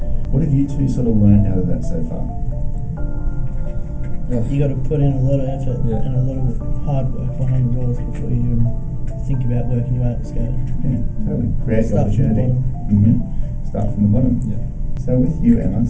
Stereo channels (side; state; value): both; identical; correlation 1.00